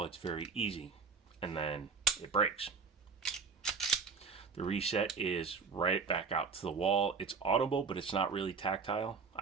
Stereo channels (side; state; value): left; quieter; 5.3 dB